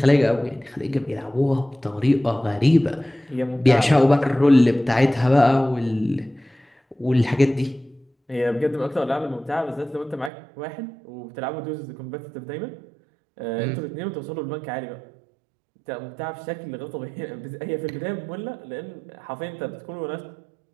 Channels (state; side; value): drops out; left; at 10.3 s